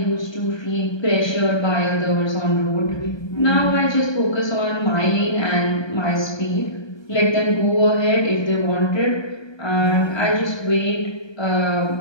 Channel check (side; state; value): right; late; 1.2 ms